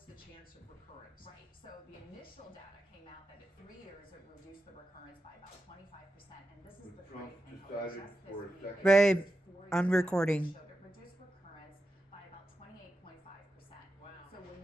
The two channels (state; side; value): normal; both; correlation 0.89